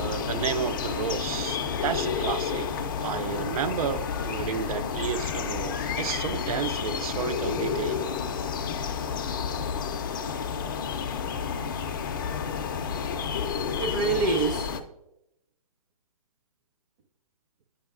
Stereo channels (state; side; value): normal; both; correlation -0.16